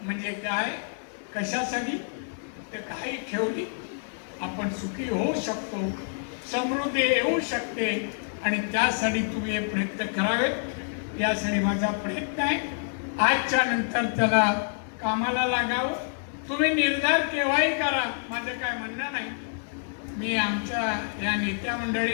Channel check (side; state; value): right; silent; 60 dB below the other